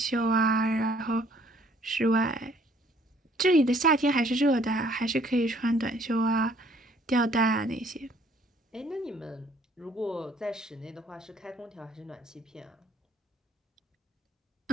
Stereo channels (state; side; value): normal; both; correlation 0.61